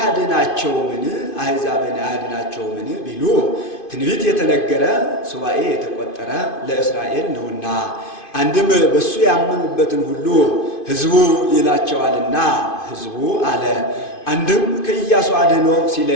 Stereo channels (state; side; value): late; right; 2.5 ms